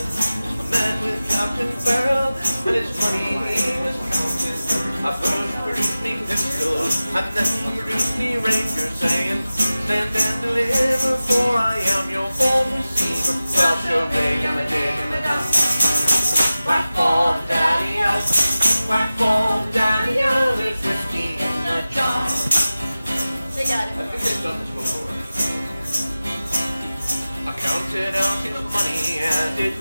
I met with Captain Farrell, and his money he was counting. I first produced me pistol, and then produced me ranger, saying, stand and deliver, for I am your bold receiver. Well, sure, big and a dig and a down. Whack ball, daddy-o, whack ball, daddy-o, there's whiskey in the jar. They got it. I think they've done this before. I counted out his money and it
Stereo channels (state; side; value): inverted; both; correlation -0.95